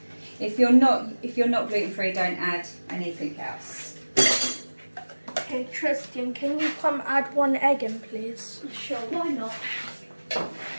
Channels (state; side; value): inverted; both; correlation -1.00